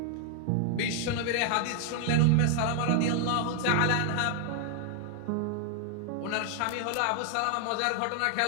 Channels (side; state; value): both; different; correlation 0.00